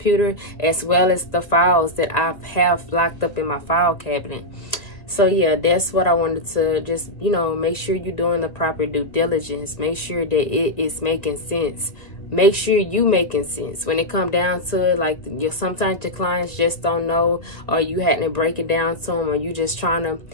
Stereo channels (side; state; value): right; late; 1.9 ms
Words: as well as the files that I have locked up in my file cabinet. So yeah, that's what I wanted to just, make sure you're doing the proper due diligence. Make sure that it is making sense. Make sure you making sense when it come down to it. Like, sometimes your clients just don't know, or you had to break it down to them, or you just trying to